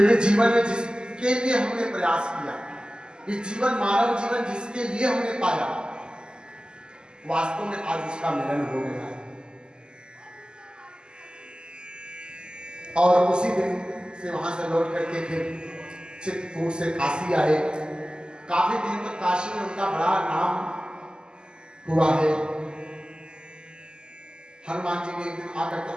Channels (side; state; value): left; late; 0.047 ms